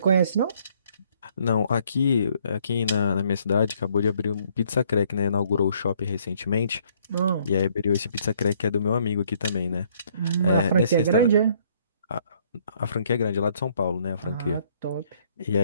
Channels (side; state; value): both; inverted; correlation -0.65